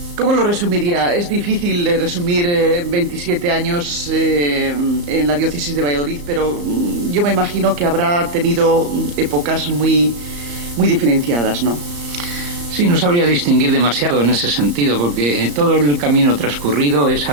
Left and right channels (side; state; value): left; late; 34 ms